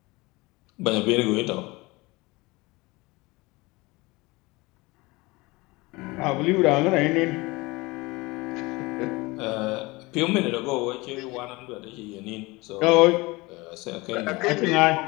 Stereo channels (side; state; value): right; quieter; 23.1 dB